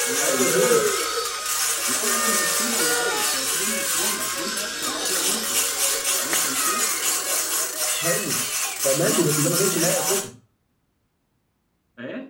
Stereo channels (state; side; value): identical; both; correlation 1.00